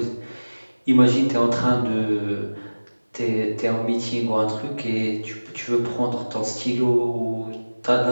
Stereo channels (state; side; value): inverted; both; correlation -1.00